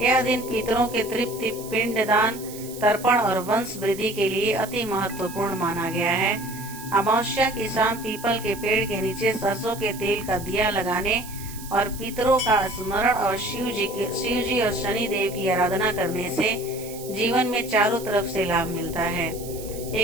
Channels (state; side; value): noise; right; hiss, 14 dB below the sound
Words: यह दिन पितरों के तृप्ति, पिंडदान, तर्पण और वंश वृद्धि के लिए अति महत्वपूर्ण माना गया है। अमावस्या की शाम पीपल के पेड़ के नीचे सरसों के तेल का दिया लगाने और पितरों का स्मरण और शिव जी और शनि देव की आराधना करने से जीवन में चारों तरफ से लाभ मिलता है।